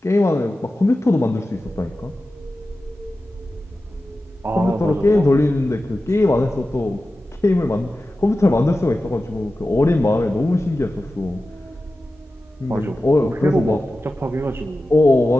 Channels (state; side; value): normal; both; correlation 0.94